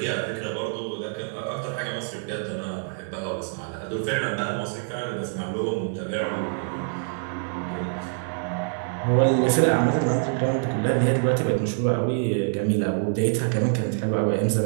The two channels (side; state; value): left; silent; 61 dB below the other